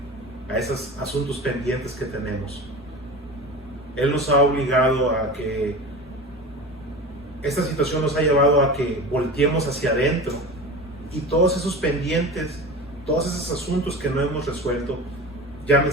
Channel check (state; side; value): normal; both; correlation 0.31